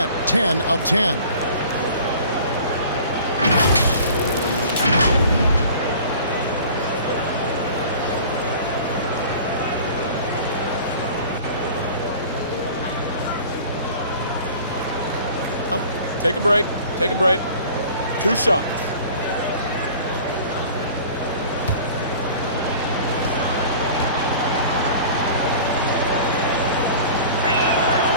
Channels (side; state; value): both; inverted; correlation -0.44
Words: 10 of 10. Take a break. Take a break. 2 shots.